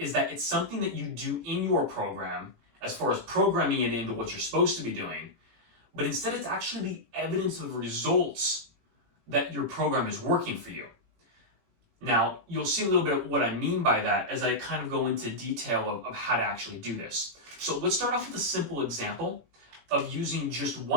that it's something that you do in your program as far as programming it into what you're supposed to be doing, but instead it's actually the evidence of results that your program is working for you. Now, you'll see a little bit of what I mean by that as I kind of go into detail of how to actually do this. So let's start off with a simple example of using just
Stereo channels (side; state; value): left; late; 18 ms